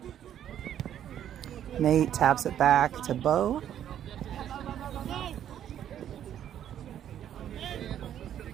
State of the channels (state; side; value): quieter; left; 10.4 dB